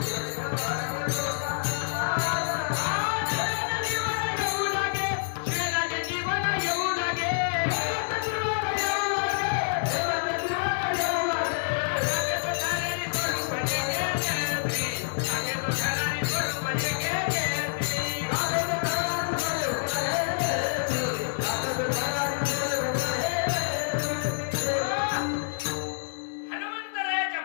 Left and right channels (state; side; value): silent; right; digital silence